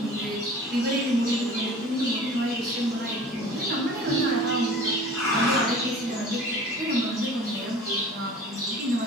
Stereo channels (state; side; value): normal; both; correlation 0.43